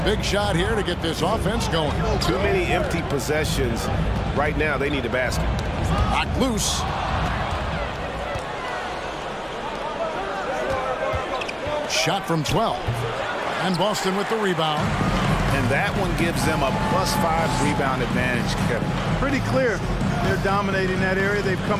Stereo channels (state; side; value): identical; both; correlation 1.00